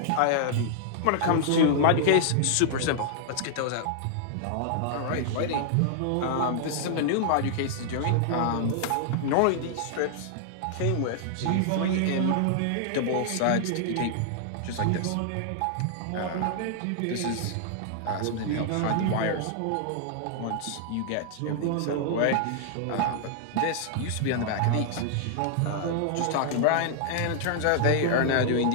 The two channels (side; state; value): both; different; correlation -0.01